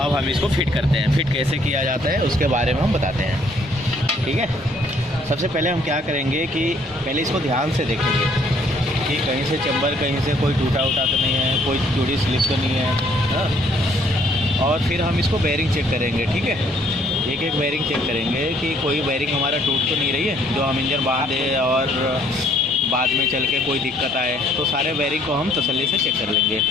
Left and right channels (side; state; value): both; normal; correlation 0.64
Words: हम इसको फिट करते हैं। फिट कैसे किया जाता है उसके बारे में हम बताते हैं, ठीक है। सबसे पहले हम क्या करेंगे कि पहले इसको ध्यान से देखेंगे कि कहीं से चैम्बर, कहीं से कोई टूटा उटा तो नहीं है, कोई जोड़ी स्लिप तो नहीं है, हाँ। और फिर हम इसको बेयरिंग चेक करेंगे, ठीक है। एक एक बेयरिंग चेक करेंगे कि कोई बेयरिंग हमारा टूट तो नहीं रही है, जो हम इंजन बांधे और बाद में चल के कोई दिक्कत आए, तो सारे बेयरिंग को हम तसल्ली से चेक कर लेंगे।